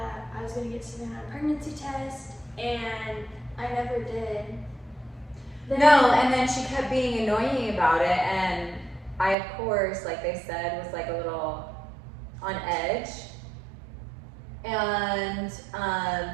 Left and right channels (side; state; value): left; drops out; at 9.3 s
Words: I was gonna get Savannah a pregnancy test and I never did. No, and then she kept being annoying about it, and I, of course, like they said, was like a little on edge. And